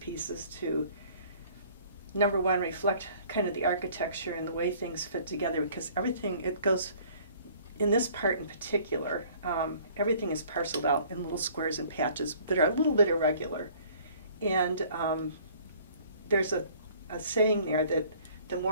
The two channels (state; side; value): inverted; both; correlation -0.54